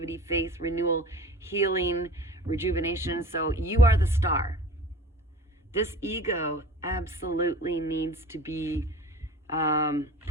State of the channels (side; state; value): both; normal; correlation 0.40